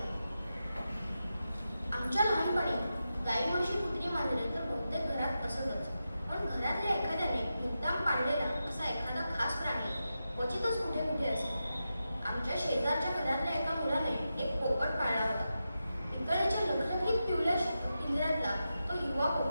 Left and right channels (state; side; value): inverted; both; correlation -0.90